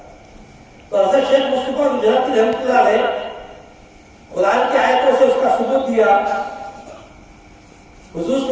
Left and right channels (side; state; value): both; identical; correlation 1.00